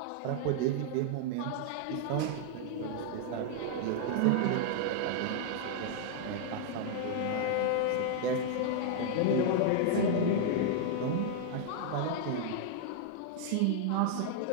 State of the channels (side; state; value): both; different; correlation -0.01